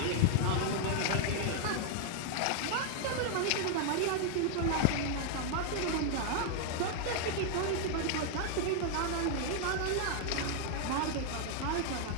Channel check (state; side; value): different; both; correlation 0.00